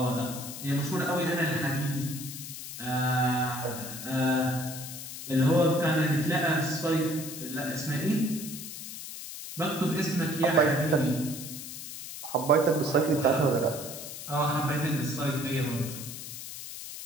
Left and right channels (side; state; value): left; noise; hiss, 10 dB below the sound